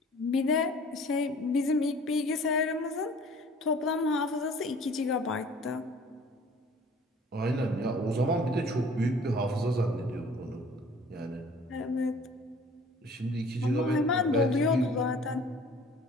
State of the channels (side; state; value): both; normal; correlation 0.50